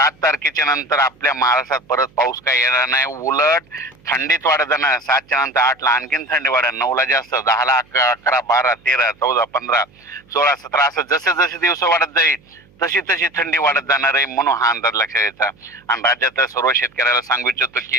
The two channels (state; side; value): noise; right; hum, 30 dB below the sound